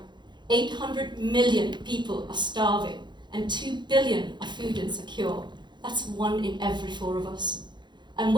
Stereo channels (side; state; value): left; late; 0.22 ms